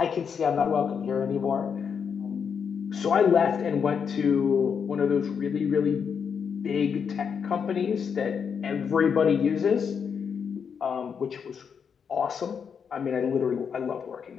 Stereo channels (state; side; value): quieter; right; 6.7 dB